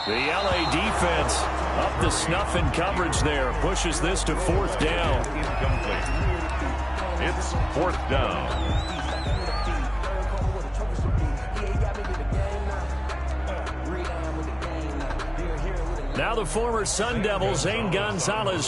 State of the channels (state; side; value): identical; both; correlation 1.00